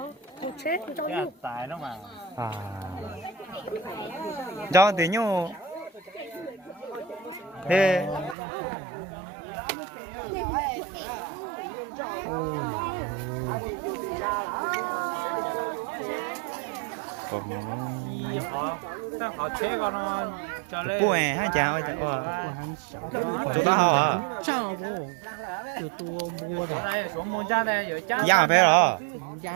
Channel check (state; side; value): drops out; left; at 8.3 s